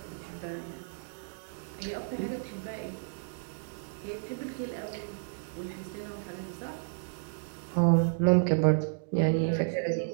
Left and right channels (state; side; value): silent; left; digital silence